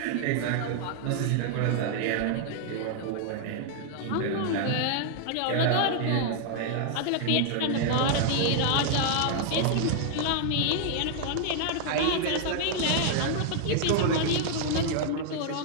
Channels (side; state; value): both; different; correlation 0.00